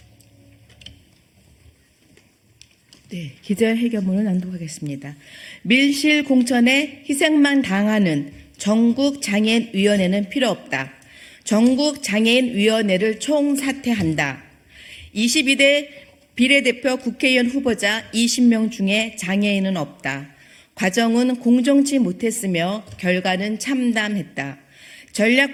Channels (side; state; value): both; identical; correlation 1.00